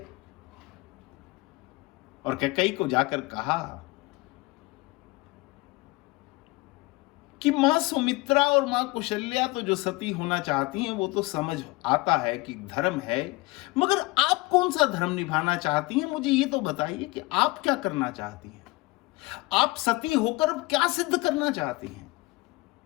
और कैकेयी को जाकर कहा कि मां सुमित्रा और मां कौशल्या तो जो सती होना चाहती हैं वो तो समझ आता है कि धर्म है, मगर आप कौन सा धर्म निभाना चाहती हैं? मुझे ये तो बताइए कि आप क्या करना चाहती हैं? आप सती होकर अब क्या सिद्ध करना चाहती हैं?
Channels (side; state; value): right; quieter; 23.0 dB